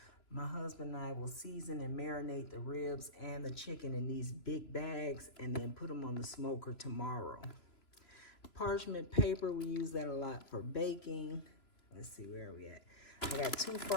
my husband and I will season and marinate the ribs and the chicken in these big bags and then put them on the smoker tomorrow. Parchment paper, we use that a lot for baking. Let's see, where are we at? I got 2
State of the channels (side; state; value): right; late; 2.9 ms